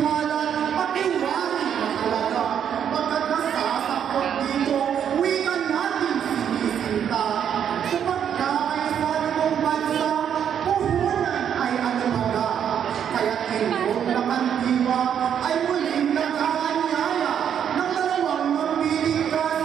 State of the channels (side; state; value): left; quieter; 8.7 dB